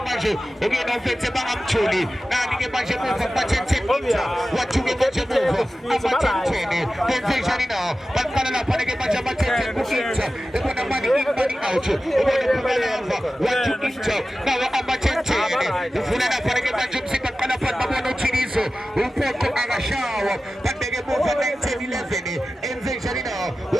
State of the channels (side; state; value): both; normal; correlation 0.95